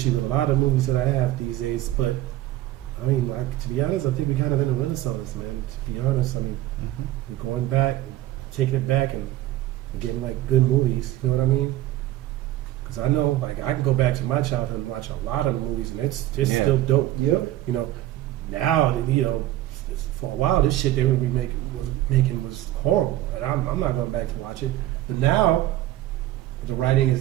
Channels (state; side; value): quieter; left; 14.8 dB